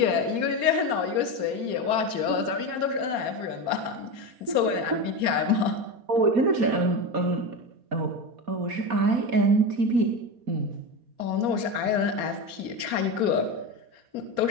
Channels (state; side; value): late; left; 4.2 ms